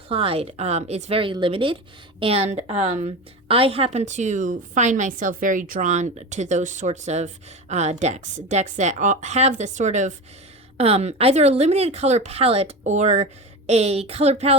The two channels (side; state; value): both; normal; correlation 0.25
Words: is very limited, and I happen to find myself very drawn to those sorts of decks that have this sort of either a limited color palette or a color